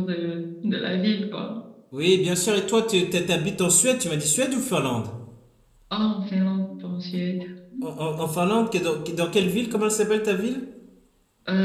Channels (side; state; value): both; identical; correlation 1.00